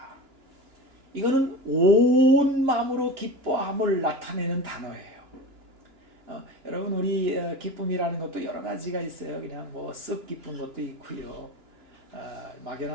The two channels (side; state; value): left; late; 2.9 ms